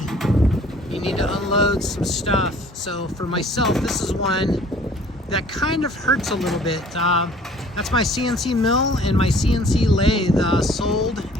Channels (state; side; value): normal; both; correlation 0.53